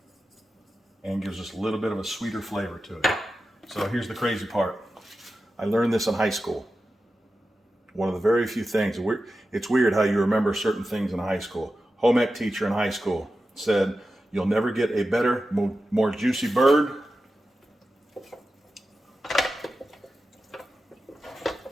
And gives us a little bit of a sweeter flavor to it. So here's the crazy part. I learned this in high school. One of the very few things, it's weird how you remember certain things in high school. Home ec teacher in high school said, you'll never get a better, more juicy bird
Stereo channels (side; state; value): both; normal; correlation 0.92